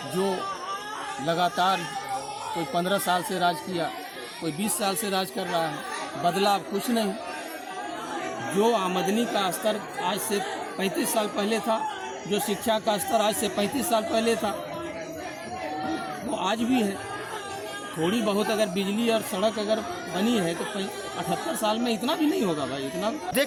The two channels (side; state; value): both; identical; correlation 1.00